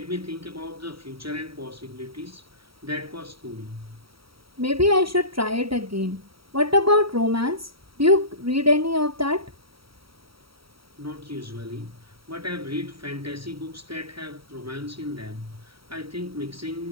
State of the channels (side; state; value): left; late; 0.75 ms